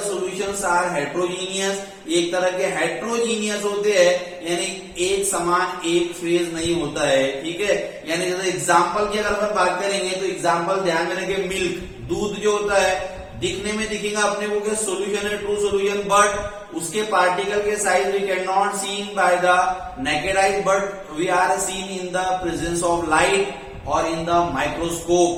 सॉल्यूशंस आर हेट्रोजीनियस, एक तरह के हेट्रोजीनियस होते हैं, यानी एक समान एक फेज नहीं होता है, ठीक है। यानी जैसे एग्जांपल की अगर अपन बात करेंगे तो एग्जांपल ध्यान में रखें, मिल्क, दूध जो होता है दिखने में दिखेगा अपने को कि सॉल्यूशन है, ट्रू सॉल्यूशन, बट उसके पार्टिकल के size we can not seen by the naked eyes, but we are seen in the presence of light और इन द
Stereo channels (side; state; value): both; identical; correlation 1.00